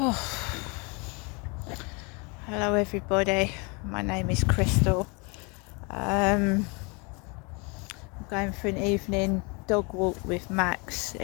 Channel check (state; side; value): quieter; right; 30.8 dB